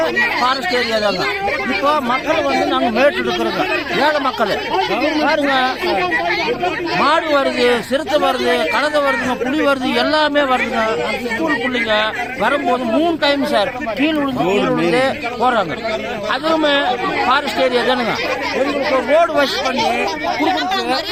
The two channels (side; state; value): left; noise; rumble, 25 dB below the sound